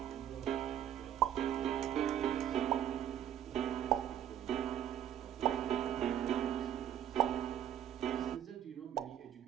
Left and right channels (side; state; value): left; quieter; 10.4 dB